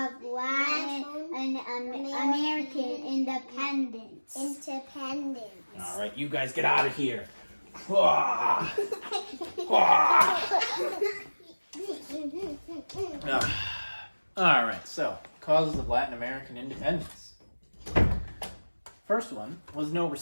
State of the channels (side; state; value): both; inverted; correlation -1.00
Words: Latin and American independence. All right, you guys get out of here. All right, so causes of Latin American independence. First one was no